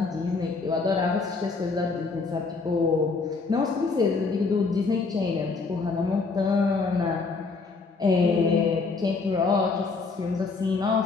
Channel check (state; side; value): quieter; right; 4.3 dB